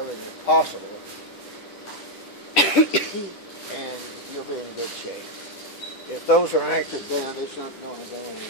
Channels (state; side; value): late; right; 10 ms